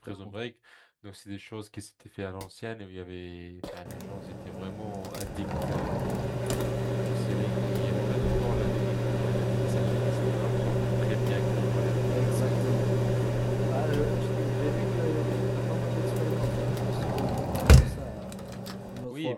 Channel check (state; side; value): identical; both; correlation 1.00